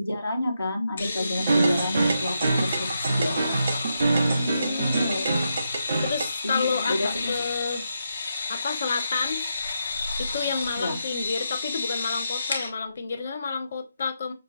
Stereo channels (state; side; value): inverted; both; correlation -0.83